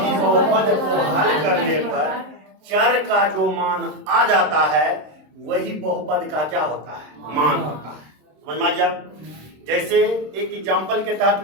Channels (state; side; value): late; left; 26 ms